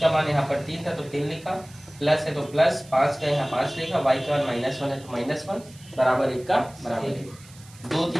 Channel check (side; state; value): right; noise; hiss, 23 dB below the sound